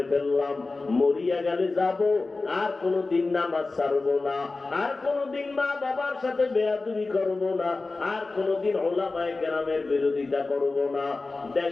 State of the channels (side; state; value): right; quieter; 3.6 dB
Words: ফেললাম, মরিয়া গেলে যাব, আর কোনদিন নামাজ ছাড়বো না, আর কোনদিন মা বাবার সাথে বেয়াদবি করব না, আর কোনদিন ওলামায়ে কেরামের বিরোধিতা করব না,